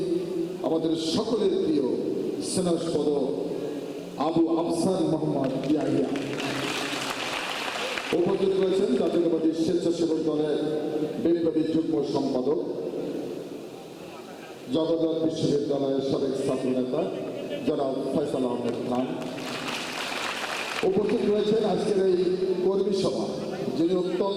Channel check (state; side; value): identical; both; correlation 1.00